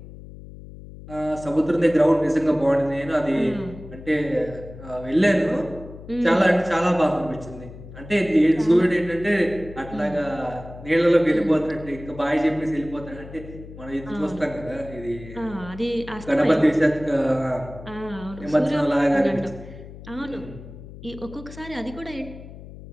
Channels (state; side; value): noise; left; hum, 15 dB below the sound